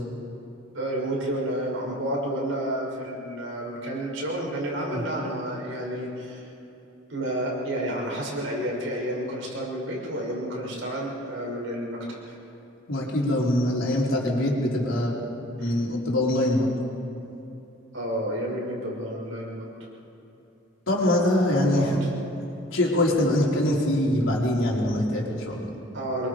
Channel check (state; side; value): normal; both; correlation 0.47